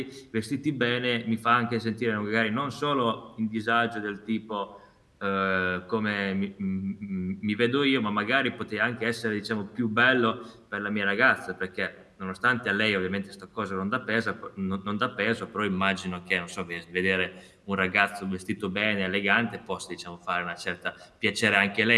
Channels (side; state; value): both; identical; correlation 1.00